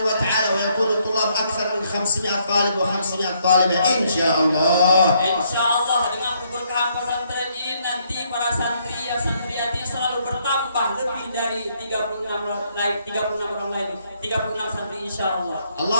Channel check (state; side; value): inverted; both; correlation -0.71